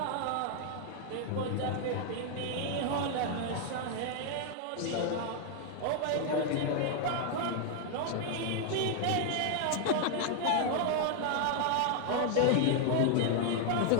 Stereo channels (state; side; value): different; both; correlation 0.00